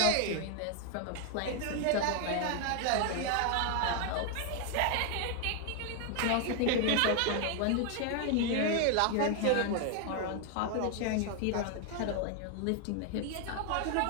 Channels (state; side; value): different; both; correlation 0.00